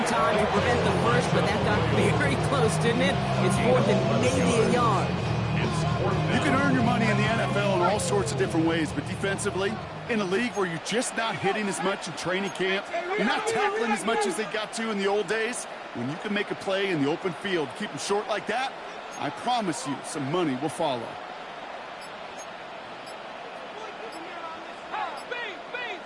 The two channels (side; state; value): both; identical; correlation 1.00